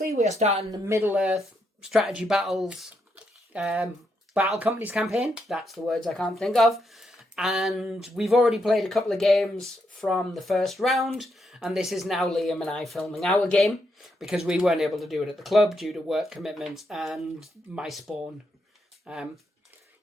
we are starting the Middle-earth Strategy Battles Battle Companies campaign. That's the words I can't think of. And we've already played a couple of games from the first round, and this is now Liam and I filming our game because we weren't able to do it at the club due to work commitments and my spawn.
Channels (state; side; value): normal; both; correlation 0.80